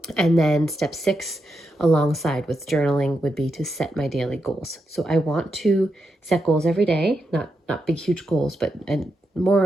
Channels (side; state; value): both; normal; correlation 0.85